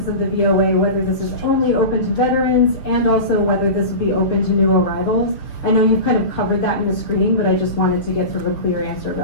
of the VOA, whether this is only open to veterans and also whether this would be open to new arrivals. I know you've kind of covered that in the screening, but I just wanted to get sort of a clear answer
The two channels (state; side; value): late; right; 6.4 ms